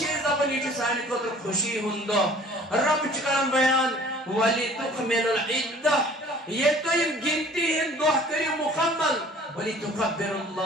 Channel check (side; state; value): both; normal; correlation 0.50